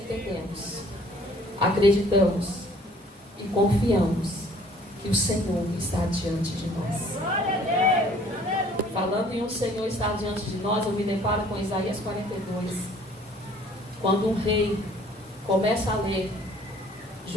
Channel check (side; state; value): both; normal; correlation 0.56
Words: acreditamos e confiamos que o Senhor está diante de nós. Falando em um Senhor estar diante de nós, eu me deparo com Isaías 42. Quando um rei começa a ler